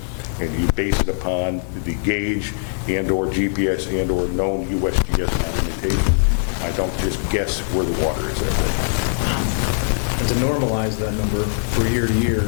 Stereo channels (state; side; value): silent; right; digital silence